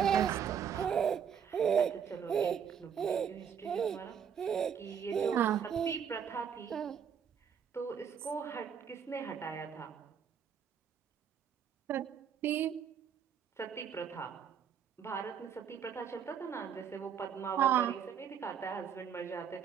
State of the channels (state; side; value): quieter; left; 7.8 dB